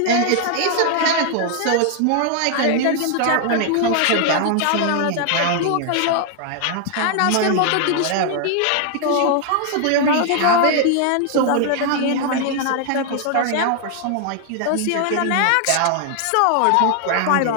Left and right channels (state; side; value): different; both; correlation 0.00